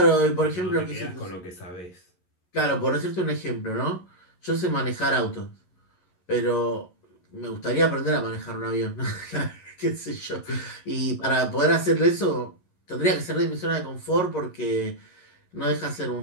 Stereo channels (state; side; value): late; right; 11 ms